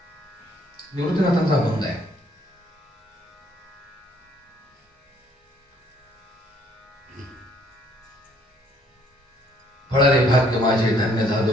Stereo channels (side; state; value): both; normal; correlation 0.64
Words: निवृत्तीनाथांचा अभंग आहे. फळारे भाग्य माझे धन्य